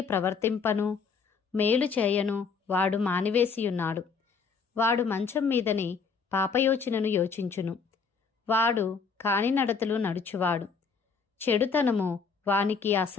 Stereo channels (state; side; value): quieter; right; 5.4 dB